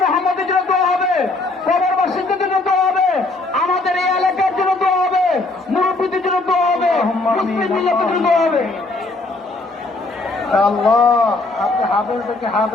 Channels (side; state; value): right; quieter; 3.2 dB